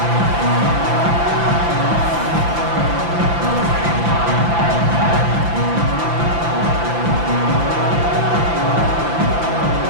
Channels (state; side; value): late; left; 5.9 ms